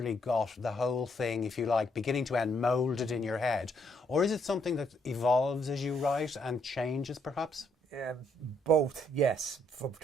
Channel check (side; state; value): both; normal; correlation 0.72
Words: got the whole thing, if you like, beginning to end, moulded in your head? Or is it something that evolves as you write and changes, perhaps? both, yes,